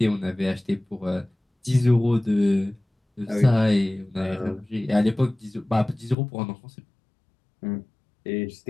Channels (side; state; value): right; drops out; at 6.2 s